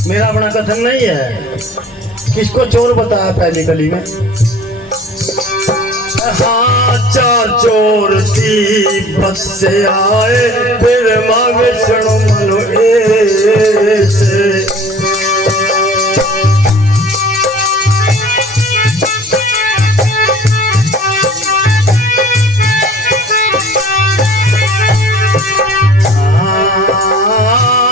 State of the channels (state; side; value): normal; both; correlation 0.47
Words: मेरा अपना कथन नहीं है। किसको चोर बताया पहली कली में? हाँ, चार चोर तिब्बत से आए, फिर मांगे शरणो मनो ऐसे।